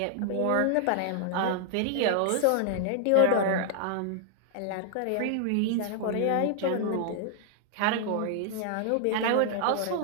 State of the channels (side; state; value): both; different; correlation 0.00